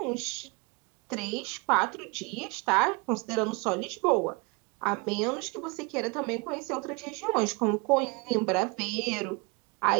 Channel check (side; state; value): left; quieter; 29.0 dB